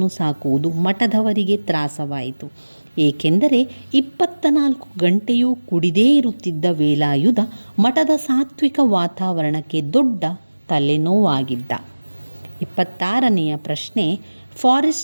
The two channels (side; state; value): both; inverted; correlation -1.00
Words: ಸಾಕುವುದು ಮಠದವರಿಗೆ ತ್ರಾಸವಾಯಿತು. ಏಕೆಂದರೆ 24 ಗಂಟೆಯೂ ಕುಡಿದೇ ಇರುತ್ತಿದ್ದ ವೇಲಾಯುಧ ಮಠದ ಸಾತ್ವಿಕ ವಾತಾವರಣಕ್ಕೆ ದೊಡ್ಡ ತಲೆನೋವಾಗಿದ್ದ. 26ನೆಯ ಪ್ರಶ್ನೆ.